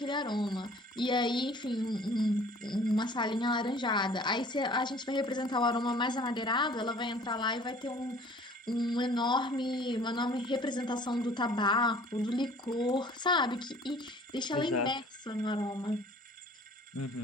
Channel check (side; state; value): both; normal; correlation 0.51